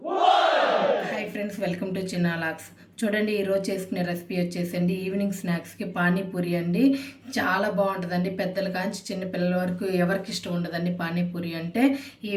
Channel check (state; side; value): identical; both; correlation 1.00